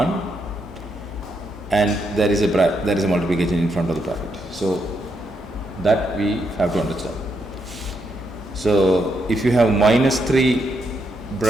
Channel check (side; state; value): both; normal; correlation 0.79